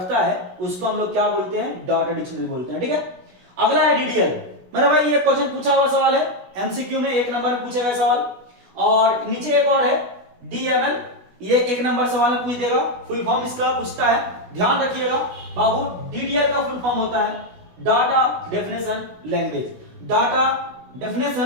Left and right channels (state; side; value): late; left; 16 ms